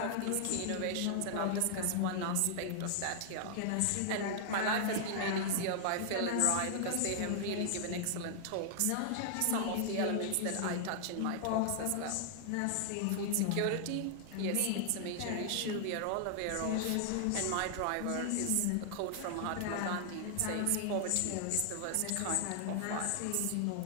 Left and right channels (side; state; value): both; different; correlation -0.01